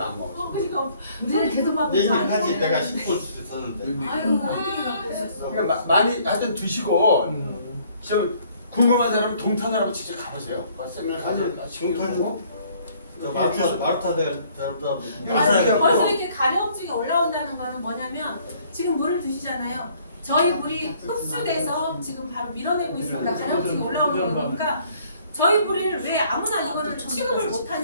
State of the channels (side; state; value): both; inverted; correlation -0.61